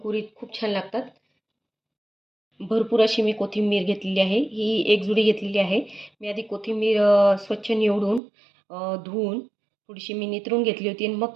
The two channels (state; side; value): drops out; left; at 8.2 s